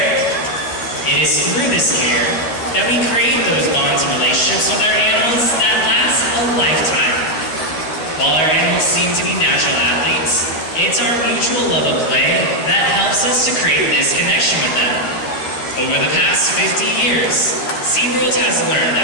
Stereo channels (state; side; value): late; right; 13 ms